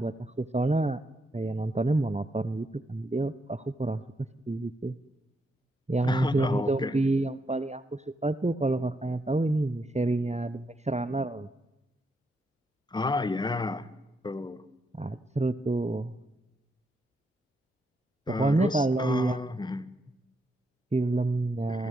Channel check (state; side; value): normal; both; correlation 0.79